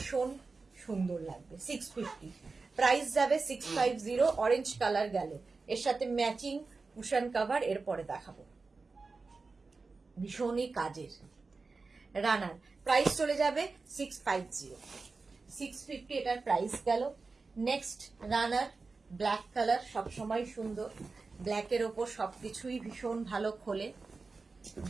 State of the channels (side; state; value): left; quieter; 4.1 dB